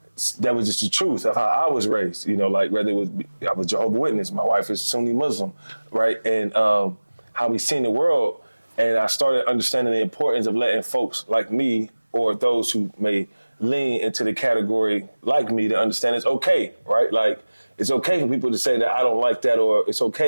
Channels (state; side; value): inverted; both; correlation -1.00